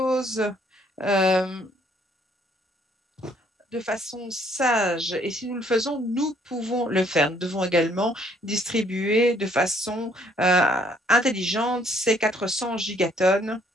de façon sage. Et si nous le faisons, nous pouvons le faire. Nous devons également distribuer de façon intelligente ces 400 gigatonnes,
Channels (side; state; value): both; normal; correlation 0.64